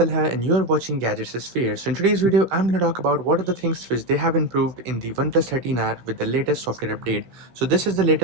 and you are watching Gadgets Sphere. So in today's video, I'm going to talk about what are the things which they have improved in the OnePlus 13R with the latest software update. So this is the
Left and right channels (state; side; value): late; left; 16 ms